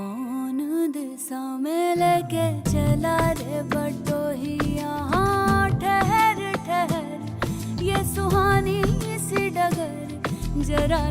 दिशा में लेके चला रे बटोही, यहाँ ठहर ठहर ये सुहानी सी डगर जरा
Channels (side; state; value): both; identical; correlation 1.00